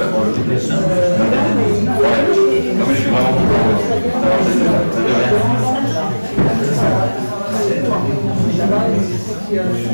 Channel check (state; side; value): inverted; both; correlation -1.00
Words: pour le TPS. Ouais. Non, mais je suis vraiment content d'avoir cette